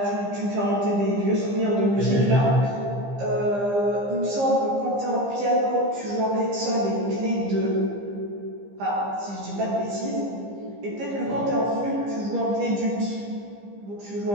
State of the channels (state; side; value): late; left; 15 ms